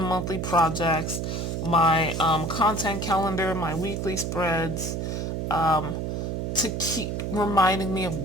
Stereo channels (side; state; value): right; noise; hum, 2 dB below the sound